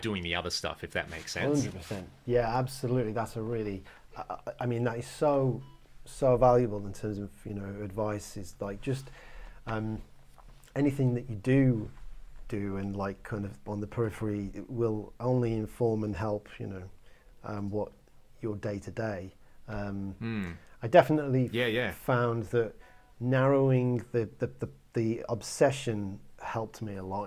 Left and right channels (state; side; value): identical; both; correlation 1.00